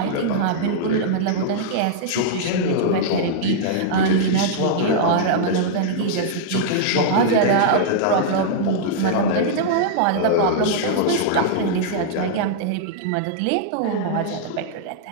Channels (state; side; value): different; both; correlation -0.02